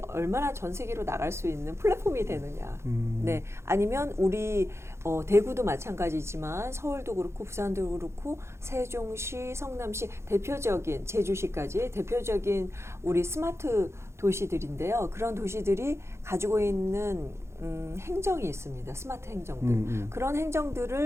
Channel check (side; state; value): left; late; 0.13 ms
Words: 얼마나 전 세계로 나갈 수 있는 플랫폼이 되느냐. 네, 아니면 우리 대구도 마찬가지지만 서울도 그렇고 부산도 그렇고 세종시, 성남시, 대표적인 제주시까지 대표적인 우리 스마트 도시들인데요. 그런 도시들이 가지고 있는 행정이 있습니다. 스마트 행정들. 그런